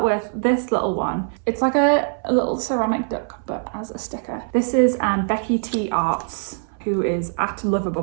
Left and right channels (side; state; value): left; silent; 63 dB below the other